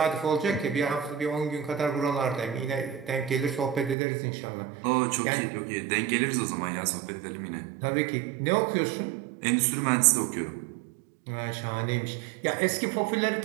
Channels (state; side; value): drops out; left; at 4.0 s